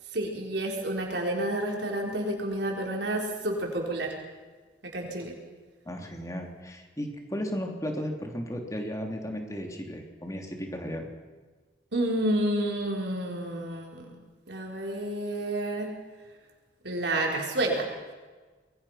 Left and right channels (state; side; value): normal; both; correlation 0.38